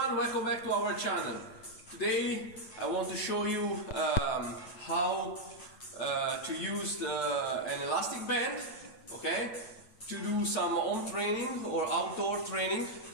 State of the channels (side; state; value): right; late; 8.8 ms